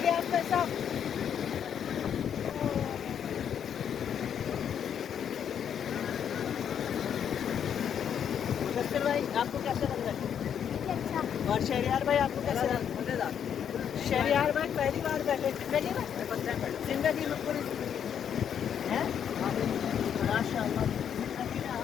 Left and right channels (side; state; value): right; quieter; 8.5 dB